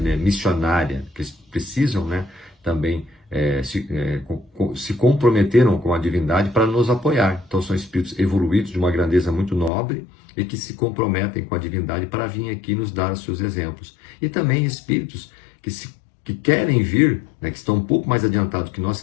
né, missionária, que eles precisam, né, também se comprometeram com a divindade para nos apoiar. Então são espíritos evoluídos de uma grandeza muito nobre e que se comprometem com a divindade para vir aqui nos dar os seus exemplos. E também espíritos que querem vir, né, que estão um pouco mais adiantados que nós,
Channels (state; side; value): drops out; right; at 9.7 s